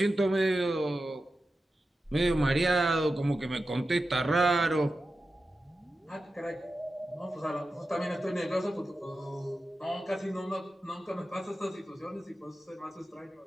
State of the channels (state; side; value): normal; both; correlation 0.92